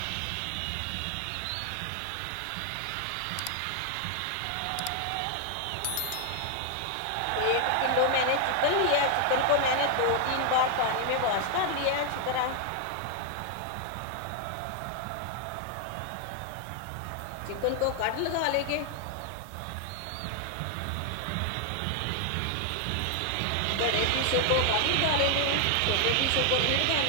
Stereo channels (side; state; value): both; different; correlation 0.00